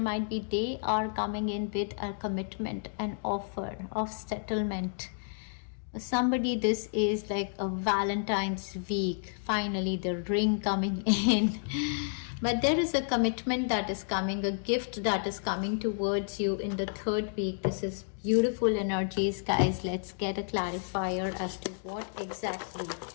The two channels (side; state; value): right; silent; digital silence